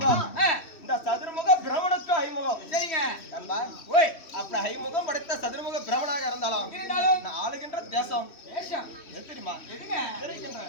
இந்த சதுர்முக பிரமனுக்கு 5 முகம். சரிங்க. நண்பா, ஓய், அப்படி 5 முகம் படைத்த சதுர்முக பிரமனாக இருந்தாலும் நான் ஆளுகின்ற தேசம் தேசம் எது தெரியுமா? எதுங்க?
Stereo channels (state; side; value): late; right; 3.1 ms